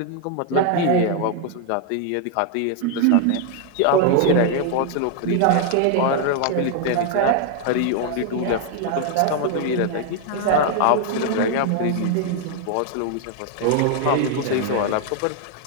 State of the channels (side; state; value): both; different; correlation 0.00